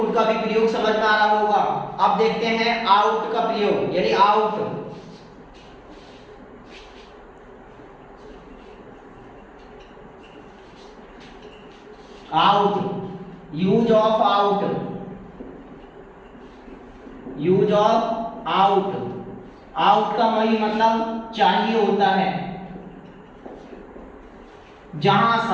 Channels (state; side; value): identical; both; correlation 1.00